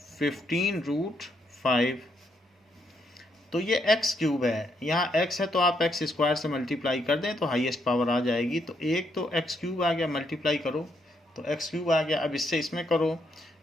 15√5। तो ये x क्यूब है, यहाँ x है तो आप x स्क्वायर से मल्टीप्लाई कर दें तो हाईएस्ट पावर आ जाएगी। तो एक तो x क्यूब आ गया, मल्टीप्लाई करो तो x क्यूब आ गया। अब इससे इसमें करो,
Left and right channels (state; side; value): normal; both; correlation 0.76